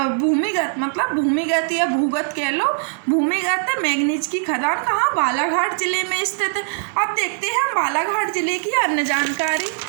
मतलब भूमिगत या भूगत कह लो, भूमिगत मैंगनीज की खदान कहाँ, बालाघाट जिले में स्थित है। अब देखते हैं हम बालाघाट जिले की अन्य जानकारी।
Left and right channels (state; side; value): silent; left; digital silence